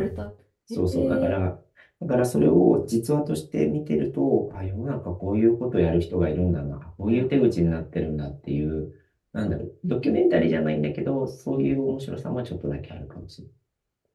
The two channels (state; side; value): identical; both; correlation 1.00